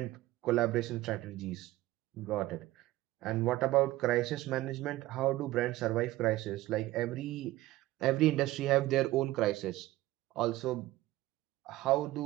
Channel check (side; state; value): left; quieter; 17.0 dB